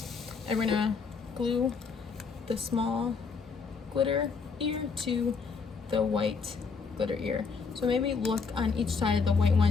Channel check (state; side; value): quieter; right; 5.1 dB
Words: and we're gonna glue the small glitter ear to the white glitter ear. So maybe look on each side of the white